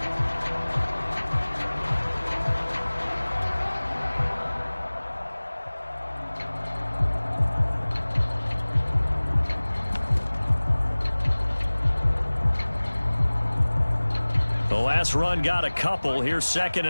The last run got a couple. Here's 2nd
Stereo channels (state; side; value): inverted; both; correlation -1.00